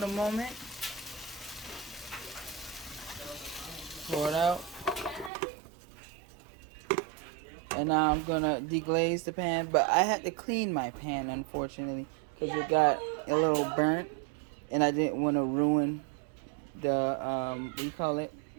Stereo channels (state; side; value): drops out; left; at 5.3 s